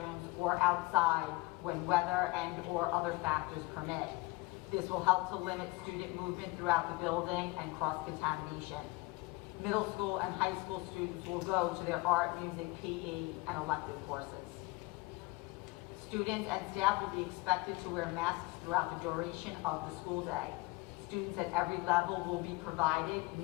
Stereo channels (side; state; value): right; quieter; 22.7 dB